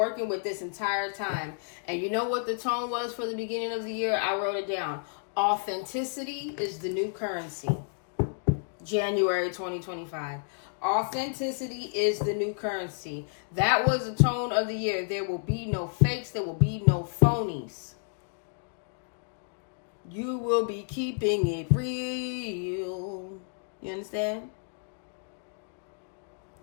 with this entire time. And you know what the tone was for the beginning of the year? I wrote it down. Authenticity is the new currency. January 2025. Authenticity is the new currency. That was the tone of the year. There will be no fakes. There will be no phonies. You will be keeping it real. You understand?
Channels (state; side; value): silent; right; digital silence